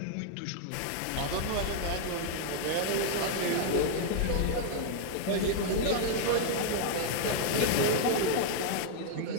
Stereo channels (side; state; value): both; different; correlation 0.00